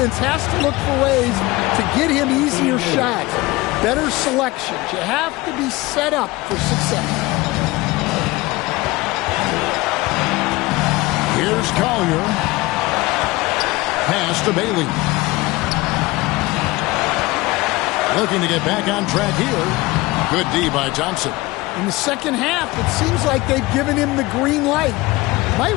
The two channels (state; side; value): quieter; right; 21.0 dB